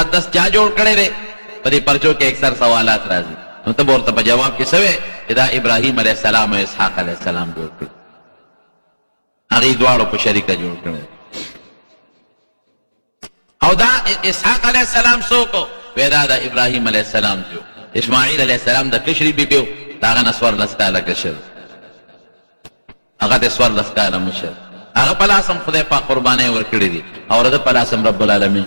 چا جوړ کړی دی، په دې پرچو کې اکثر سوالات راځي، نو ته به ورته په جواب کې څه وایې چې دا ابراهیم علیه السلام او اسحاق علیه السلام جوړ کړي، هغې دواړو په شریکه جوړ کړی. او دا اسحاق علیه السلام څوک و؟ وی دا د ابراهیم علیه السلام جو. اسماعیل علیه السلام د کشري بیبي و، د هغه نه 14 کاله کشر، هغه ته 14 کاله مشر. هغه په لاس هم خدای پاک قربانۍ ورکړي دي او د په لاس هم رب العالمین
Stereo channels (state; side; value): inverted; both; correlation -1.00